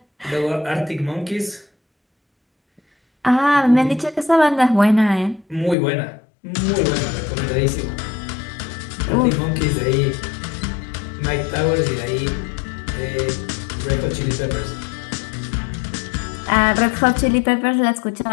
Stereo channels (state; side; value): drops out; right; at 5.8 s